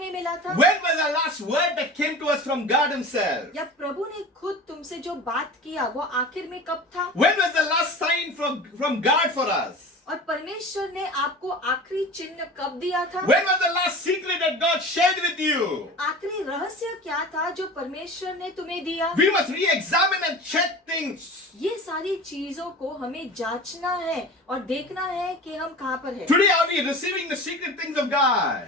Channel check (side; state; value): both; normal; correlation 0.35